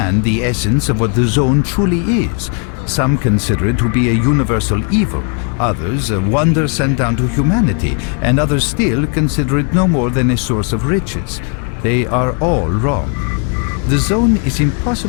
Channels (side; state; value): right; quieter; 39.1 dB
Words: the essence of what the zone truly is. Some consider it to be a universal evil, others a wonder sent down to humanity, and others still consider it no more than a source of riches. They are all wrong. The zone is